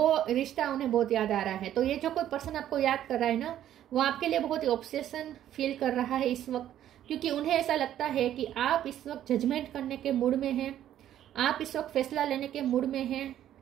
रिश्ता उन्हें बहुत याद आ रहा है। तो ये जो कोई पर्सन आपको याद कर रहा है ना, वो आपके लिए बहुत ही ऑब्सेशन फील कर रहा है इस वक्त, क्योंकि उन्हें ऐसा लगता है कि आप इस वक्त जजमेंट करने के मूड में हैं, आप इस वक्त फैसला लेने के मूड में हैं,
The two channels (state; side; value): quieter; left; 11.5 dB